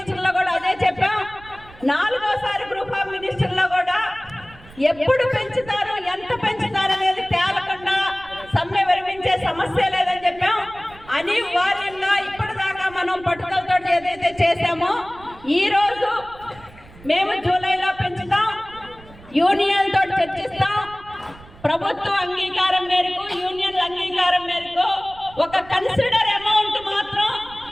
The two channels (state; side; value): noise; right; rumble, 22 dB below the sound